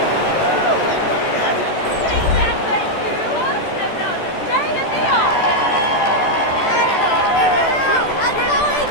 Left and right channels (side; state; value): right; late; 14 ms